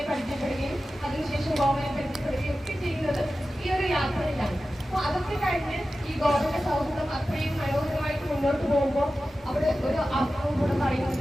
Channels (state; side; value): normal; both; correlation 0.94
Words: പരിചയപ്പെടുകയും അതിനുശേഷം ഗോവനെ പരിചയപ്പെടുകയും ഒക്കെ ചെയ്യുന്നത് ഈ ഒരു യാത്രയിലാണ്. അപ്പൊ അതൊക്കെ കഴിഞ്ഞ് ഈ ഗോവന്റെ സൗഹൃദം അത്രയും മനോഹരമായിട്ട് മുന്നോട്ട് പോകുമ്പോൾ അവിടെ ഒരു അർത്ഥവും കൂടെ പറയുന്നത്